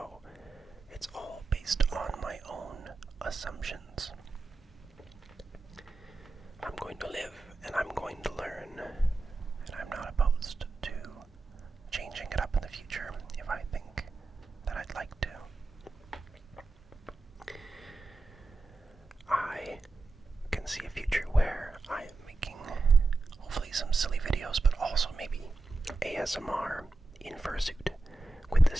it's all based on my own assumptions. I'm going to live and I'm going to learn, and I'm not opposed to changing it up in the future if I think that I'd like to. I can see a future where I am making hopefully some silly videos, but also maybe ASMR in Fursuit, with the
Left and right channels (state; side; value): quieter; left; 3.2 dB